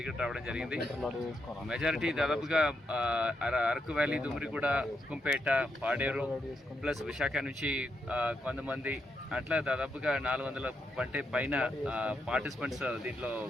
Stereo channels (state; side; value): normal; both; correlation 0.81